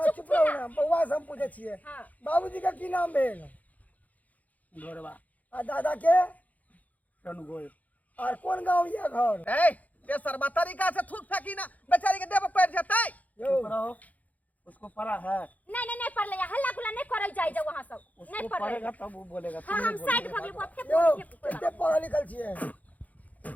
चुप रहो ना बउआ से हम पूछे छिए हां बाबूजी का की नाम भेल गोरवा आ दादा के रनगोय और कौन गांव ये घर ए ते सरबा तरीका से थूक फेंकी ना बेचारी के देव पड़ जतै यो रहो उसको पढ़ा है, नहीं पढ़ लिया, हल्ला गुल्ला नहीं करे जाए जा वहां सब नहीं उसको पढ़ पढ़ेगा लिया। तब वो बोलेगा। हां हम साइड भगले को फेंक यो फेंक कितने पढ़ा लिखल छिए?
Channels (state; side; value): late; right; 0.076 ms